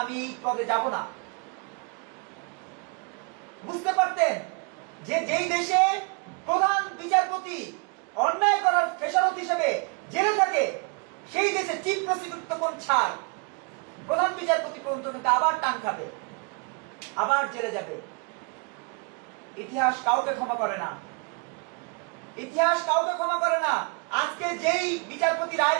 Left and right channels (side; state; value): left; quieter; 34.2 dB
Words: আমি এই পদে যাব না। বুঝতে পারতেন যে যেই দেশে প্রধান বিচারপতি অন্যায় করার খেসারত হিসেবে জেলে থাকে, সেই দেশে চিফ প্রসিকিউটর তখন ছাড়, প্রধান বিচারপতি পর্যন্ত কিন্তু আবার টান খাবে, আবার জেলে যাবে। ইতিহাস কাউকে ক্ষমা করে না, ইতিহাস কাউকে ক্ষমা করে না। আজকে যেই বিচারপতি